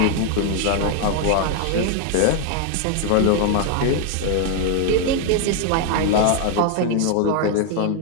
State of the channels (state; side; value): different; both; correlation 0.01